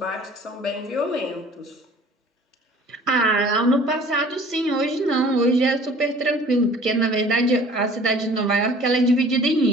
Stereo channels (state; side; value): normal; both; correlation 0.49